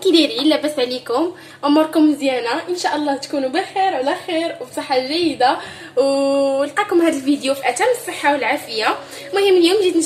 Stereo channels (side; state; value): both; identical; correlation 1.00